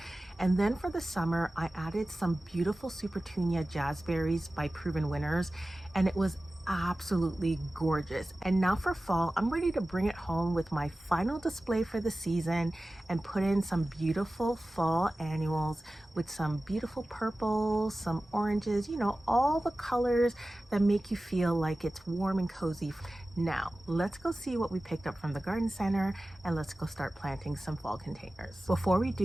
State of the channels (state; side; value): normal; both; correlation 0.96